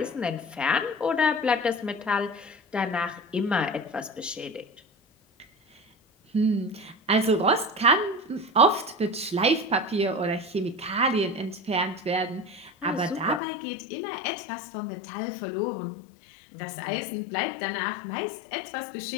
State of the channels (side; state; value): right; drops out; at 13.4 s